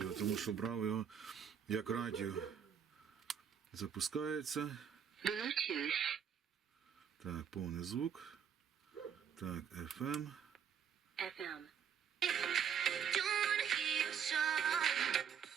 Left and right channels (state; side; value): quieter; left; 7.8 dB